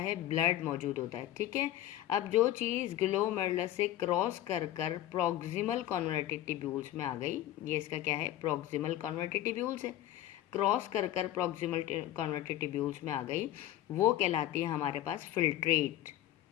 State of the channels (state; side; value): quieter; right; 13.6 dB